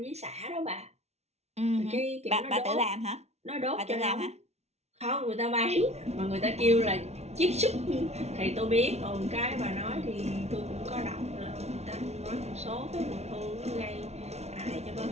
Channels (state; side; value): late; left; 0.31 ms